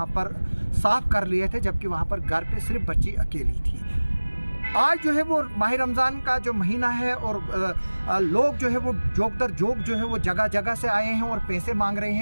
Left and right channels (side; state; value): both; inverted; correlation -1.00